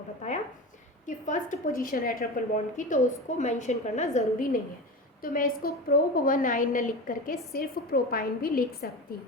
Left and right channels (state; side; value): normal; both; correlation 0.27